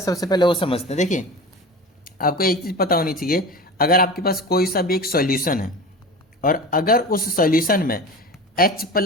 सबसे पहले वो समझते हैं। देखिए, आपको एक चीज़ पता होनी चाहिए, अगर आपके पास कोई सा भी एक सॉल्यूशन है और अगर उस सॉल्यूशन में H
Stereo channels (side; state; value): both; normal; correlation 0.33